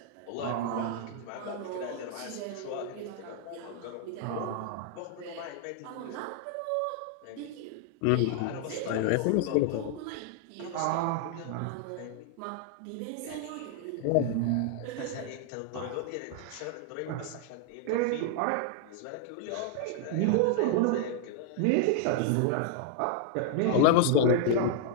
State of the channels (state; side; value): different; both; correlation 0.00